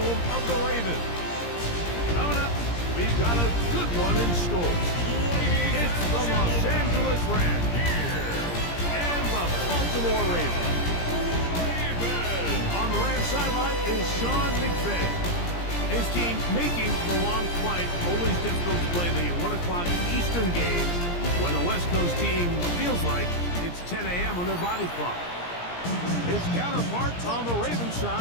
of the Ravens. Coming up, we've got a good one in store. It's the Los Angeles Rams and the Baltimore Ravens. On the Rams sideline is Sean McVay. His team making the long flight. Always difficult to play the 1 o'clock Eastern game when a West Coast team feels like it's 10 a.m. on their body clock. His counterpart on the Ravens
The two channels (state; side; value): late; right; 17 ms